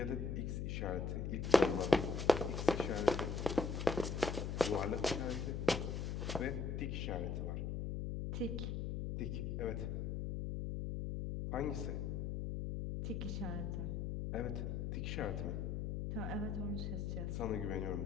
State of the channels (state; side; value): noise; left; hum, 2 dB below the sound